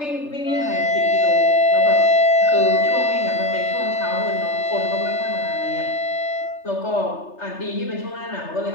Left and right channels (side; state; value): right; late; 3.3 ms